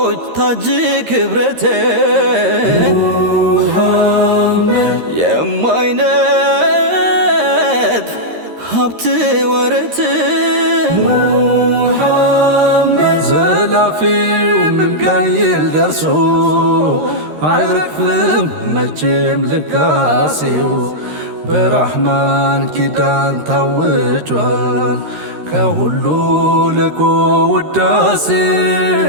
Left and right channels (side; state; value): left; late; 13 ms